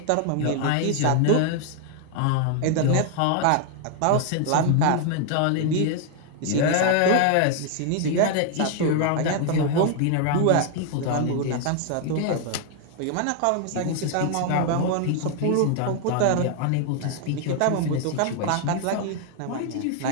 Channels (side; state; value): both; different; correlation 0.00